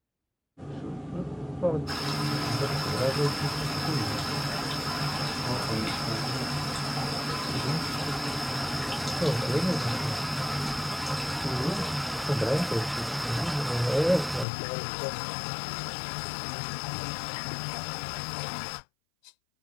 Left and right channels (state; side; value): drops out; right; at 14.5 s